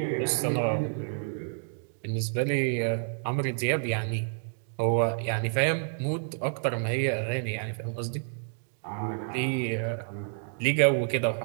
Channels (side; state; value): left; silent; digital silence